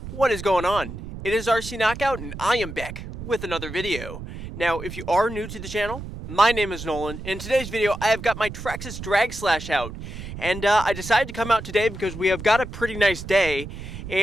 what is going on? It is RC Knockout and I am back with another video. Now, if you are new to the channel, my name is Nolan. In today's video, I have got my Traxxas Slash out. And I decided to come out today because we have got a pretty nice day.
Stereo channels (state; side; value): noise; right; rumble, 10 dB below the sound